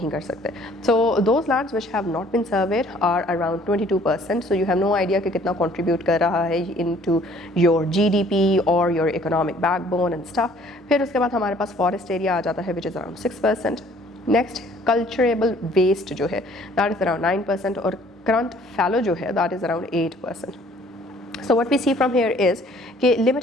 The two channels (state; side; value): normal; both; correlation 0.57